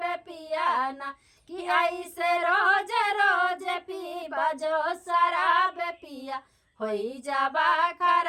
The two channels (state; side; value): identical; both; correlation 1.00